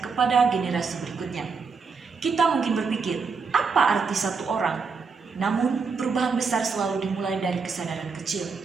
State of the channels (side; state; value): left; quieter; 5.1 dB